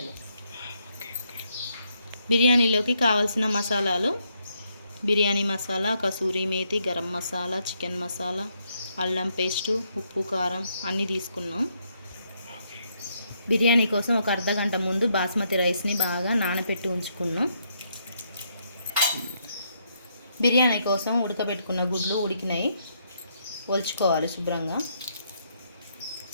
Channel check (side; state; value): both; inverted; correlation -0.75